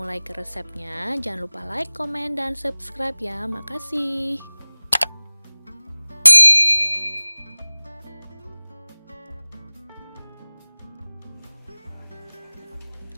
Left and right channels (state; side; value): inverted; both; correlation -1.00